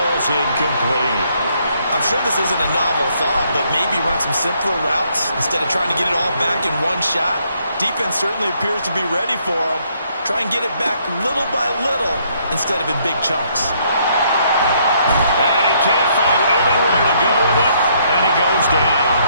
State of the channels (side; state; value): both; inverted; correlation -0.69